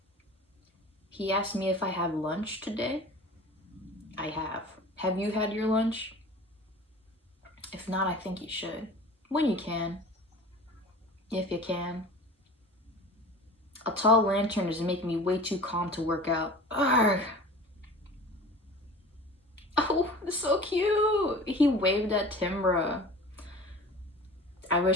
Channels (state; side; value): normal; both; correlation 0.40